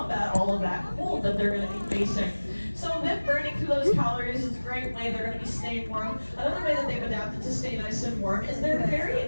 all of that cold that they're going to be facing. So them burning through those calories is a great way they're going to be staying warm. Another way that they've adapted to stay nice and warm is they're very,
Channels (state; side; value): inverted; both; correlation -1.00